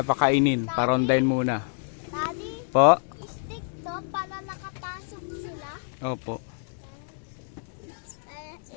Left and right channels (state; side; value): silent; right; digital silence